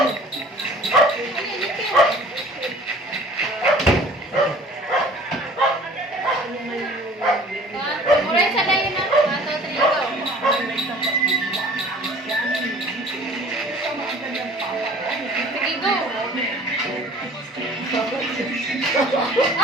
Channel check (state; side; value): normal; both; correlation 0.48